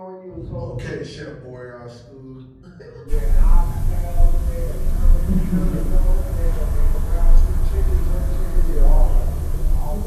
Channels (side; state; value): both; identical; correlation 1.00